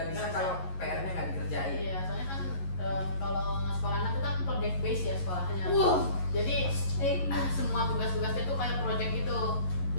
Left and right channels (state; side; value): late; right; 11 ms